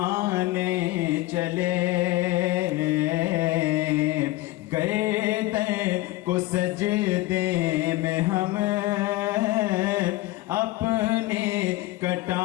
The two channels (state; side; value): quieter; right; 18.5 dB